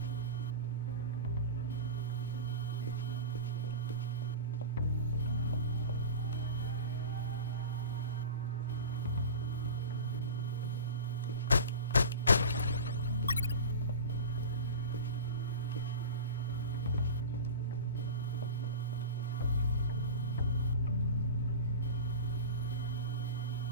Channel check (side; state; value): both; inverted; correlation -0.31